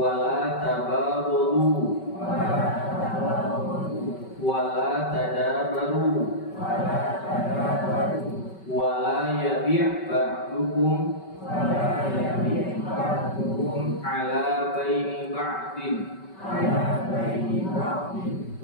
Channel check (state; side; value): late; right; 5.2 ms